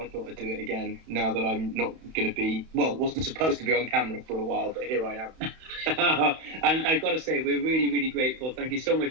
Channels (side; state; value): left; late; 31 ms